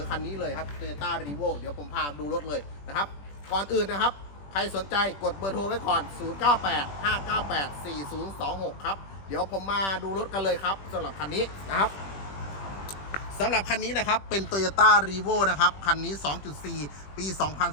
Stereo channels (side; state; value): right; late; 21 ms